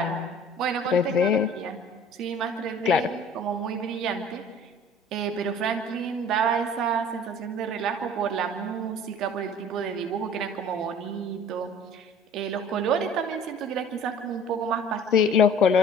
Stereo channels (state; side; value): normal; both; correlation 0.49